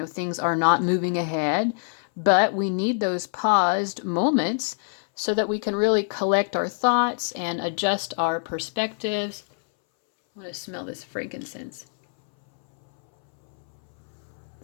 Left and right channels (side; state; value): right; silent; 62 dB below the other